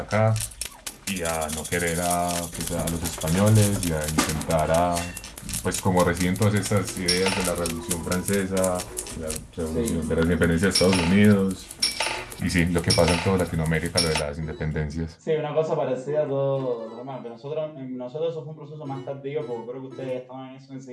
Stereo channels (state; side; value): identical; both; correlation 1.00